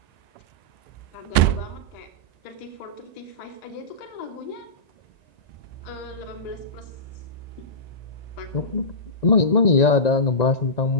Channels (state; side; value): late; right; 1.9 ms